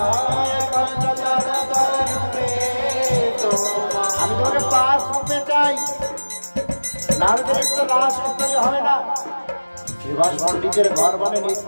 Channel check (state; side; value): inverted; both; correlation -1.00